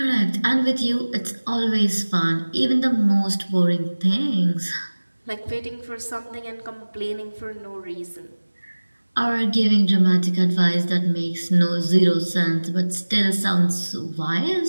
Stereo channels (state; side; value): inverted; both; correlation -1.00